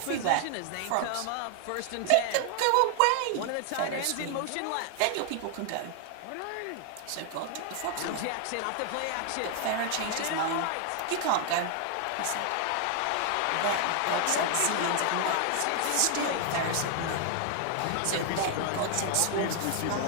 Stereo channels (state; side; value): different; both; correlation 0.00